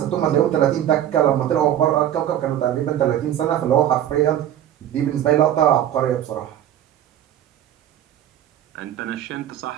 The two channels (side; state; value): left; quieter; 11.2 dB